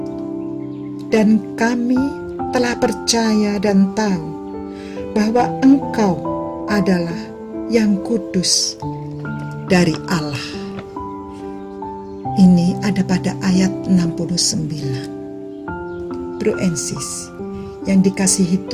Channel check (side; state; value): both; identical; correlation 1.00